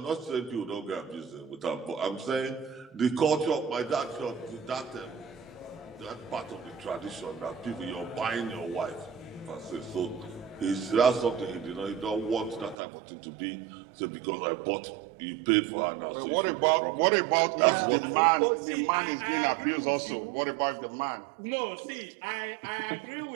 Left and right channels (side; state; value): left; drops out; at 12.8 s